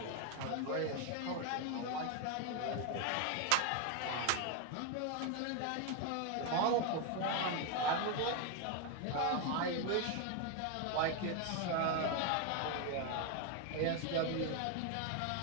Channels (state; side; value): different; both; correlation 0.01